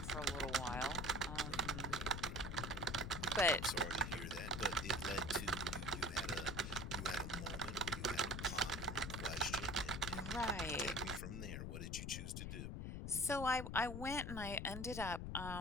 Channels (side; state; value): left; noise; rumble, 5 dB below the sound